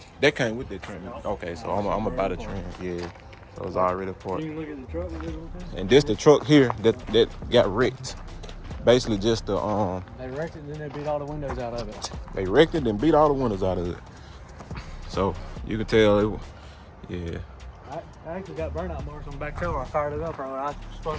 that came with the trim. Okay, so I'm gonna buy the trim. Yeah, so it's already part. You can look at the truck. And this the truck here that got wrecked. Basically just the They wrecked it and then they beat all the windows out of it. they wrecked it and beat all the windows out of it. So you can tell yeah. I actually got burnout marks on the back tail. I fired it up earlier. I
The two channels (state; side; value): identical; both; correlation 1.00